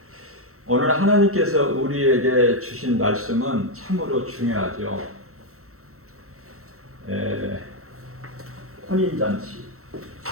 오늘 하나님께서 우리에게 주신 말씀은 참으로 중요하죠. 혼인잔치.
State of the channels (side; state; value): left; late; 0.63 ms